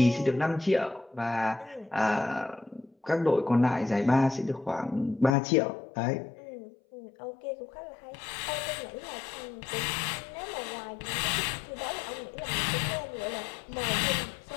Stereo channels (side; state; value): right; drops out; at 5.4 s